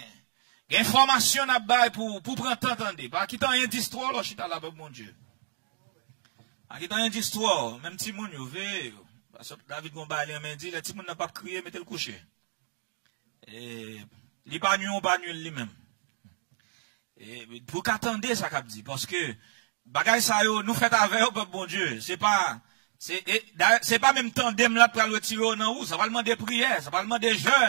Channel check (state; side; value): silent; left; digital silence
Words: information à bail pour prendre entendre. Pas qui t'en rien d'histoire là chita là mon Dieu. Pas qui t'en rien d'histoire, même si moun yo ve parce que David Gomba il m'a dit le petit moun n'a pas crié mettez le coucher. Et li pas nul lui-même. Et pour qu'attendez ça qu'a dit parce que bagay ça yo nous fait avec peuple bon Dieu, c'est pas même tandem là pour le tirer dans où, ça va demander prière, ça va demander